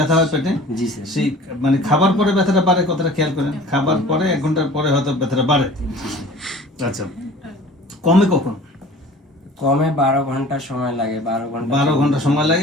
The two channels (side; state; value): both; normal; correlation 0.45